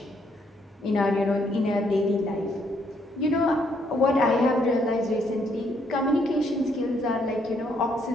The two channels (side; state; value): both; normal; correlation 0.71